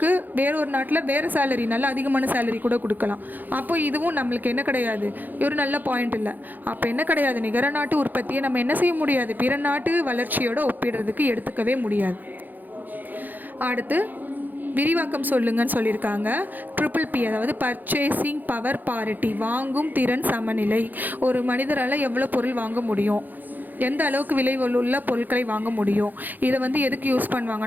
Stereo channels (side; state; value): left; late; 0.085 ms